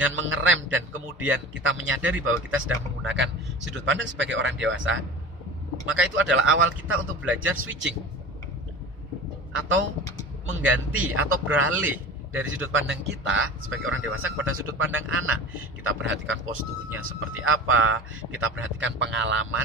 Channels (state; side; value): normal; both; correlation 0.34